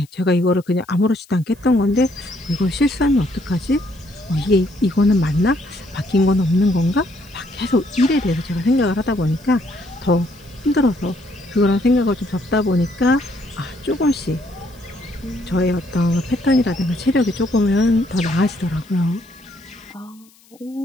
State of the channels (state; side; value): noise; left; hiss, 29 dB below the sound